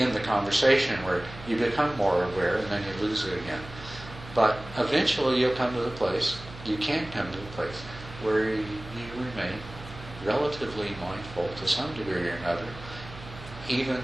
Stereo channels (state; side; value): noise; right; hum, 15 dB below the sound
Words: the conversation where you become more aware, and then you lose it again. But eventually you'll come to the place, you can come to the place where you remain relatively mindful to some degree or another, even